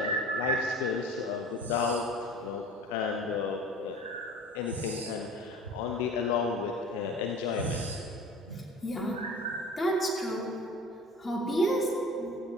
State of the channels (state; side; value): normal; both; correlation 0.39